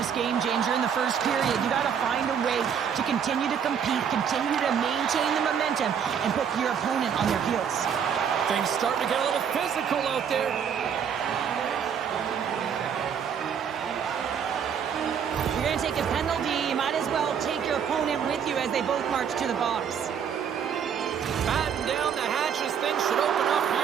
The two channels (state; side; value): quieter; left; 7.7 dB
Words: game, James. You're in the first period. You got to find a way to continue to compete, continue to maintain the momentum, and put your opponent on their heels. Things starting to get a little physical out there. You're going to take a penalty. You might as well take your opponent with you as they both march to the box. Batten down the hatches. Things should open up